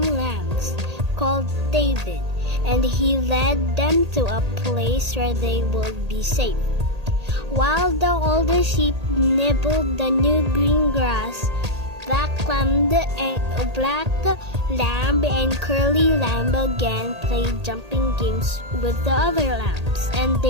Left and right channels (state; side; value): late; left; 1.8 ms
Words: lambs," called David, and he led them to a place where they would be safe. While the older sheep nibbled the new green grass, black lamb and curly lamb again played jumping games with the other lambs, and